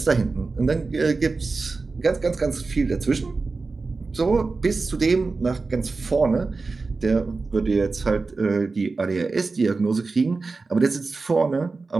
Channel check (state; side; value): quieter; left; 4.0 dB